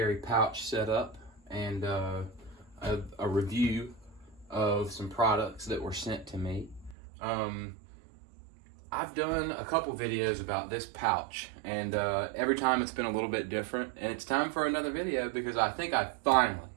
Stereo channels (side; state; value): left; drops out; at 7.0 s